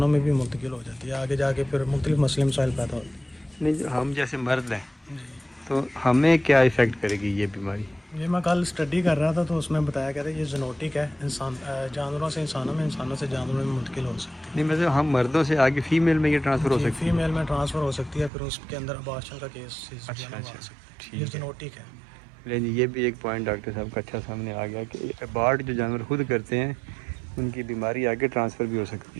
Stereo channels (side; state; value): left; drops out; at 18.3 s